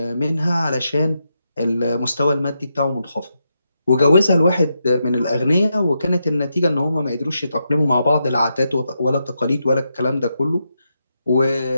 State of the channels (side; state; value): both; inverted; correlation -0.84